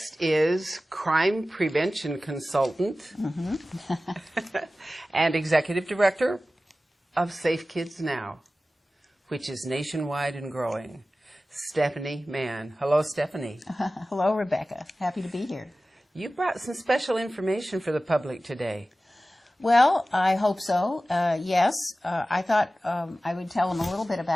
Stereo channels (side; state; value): both; normal; correlation 0.96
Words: is crime prevention consultant and executive director of Safe Kids Now, which is nationwide and growing, Stephanie Mann. Hello, Stephanie. Hello, Rebecca. Happy to be here. You brought some special information for the public today. Well, I hope so. Yes, I thought I would tell them a little bit